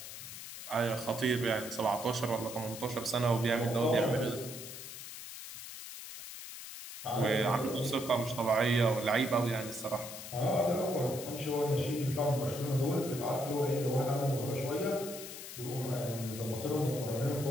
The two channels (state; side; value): noise; left; hiss, 11 dB below the sound